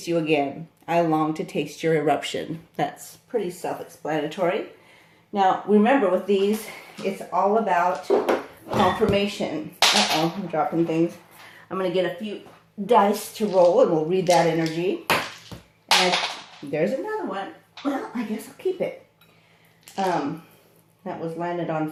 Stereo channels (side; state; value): both; identical; correlation 1.00